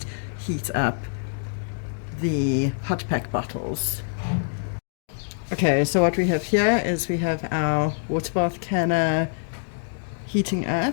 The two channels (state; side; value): silent; right; digital silence